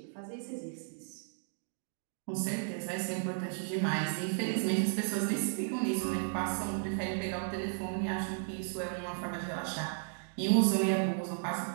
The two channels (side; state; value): left; silent; digital silence